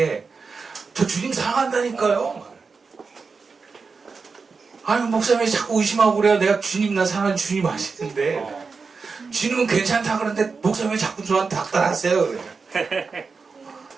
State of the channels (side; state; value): left; quieter; 4.8 dB